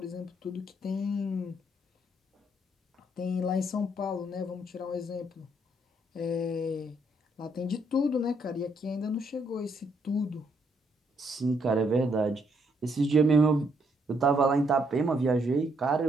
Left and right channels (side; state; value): both; normal; correlation 0.72